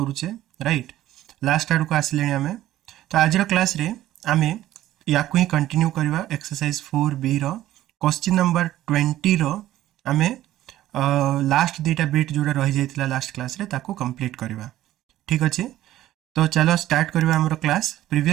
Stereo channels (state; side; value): quieter; left; 14.0 dB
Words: राइट। लास्ट आड़ को आसिले आम तो आज क्लास रे आम या ही कंटिन्यू करवा एक्सरसाइज 4B क्वेश्चन नंबर 20 आम लास्ट दुईटा बिट जोड़ा रही जाता लास्ट क्लास रे ताको कंप्लीट करवा। ठीक अच्छे, तो चलो स्टार्ट करवा हमरो क्लास।